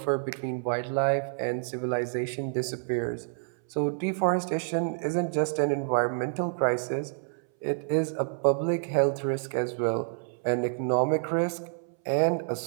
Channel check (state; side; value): silent; left; 59 dB below the other